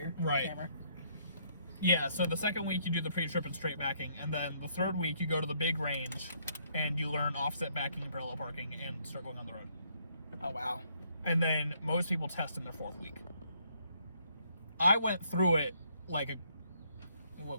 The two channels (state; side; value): inverted; both; correlation -0.69